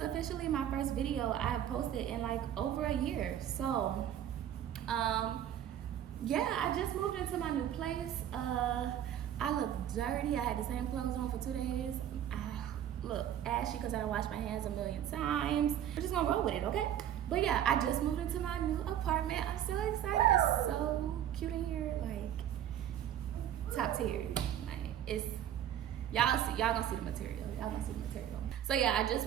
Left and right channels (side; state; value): left; quieter; 10.6 dB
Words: my first video I have posted in like over a year. So, yeah, I just moved into my new place. I look dirty. I had the same clothes on for 2 days. I look ashy because I don't wash my hands a million times. We're just gonna roll with it, okay? But yeah, I just moved into my new apartment. I'm so excited. It's so cute in here, like top tier. Like it's y'all gonna see the material. Y'all gonna see the material. So yeah, I just